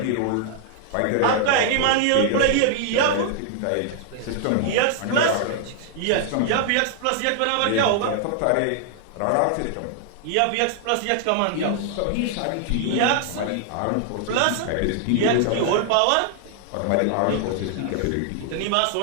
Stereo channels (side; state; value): both; different; correlation 0.00